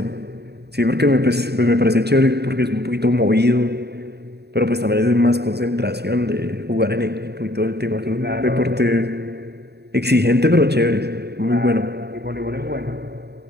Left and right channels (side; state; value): left; late; 0.48 ms